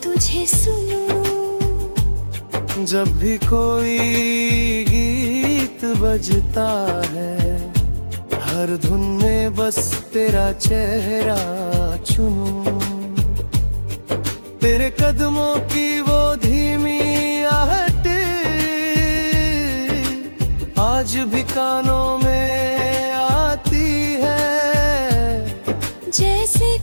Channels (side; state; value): both; inverted; correlation -1.00